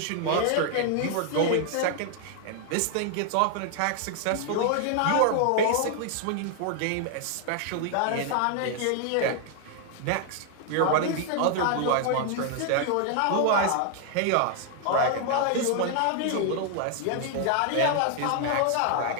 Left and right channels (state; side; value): different; both; correlation 0.00